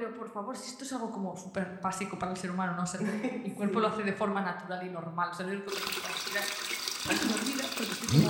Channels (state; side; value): identical; both; correlation 1.00